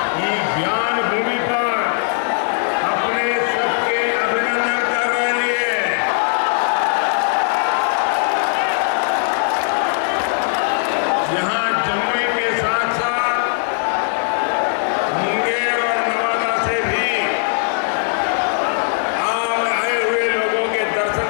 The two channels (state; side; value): silent; right; 67 dB below the other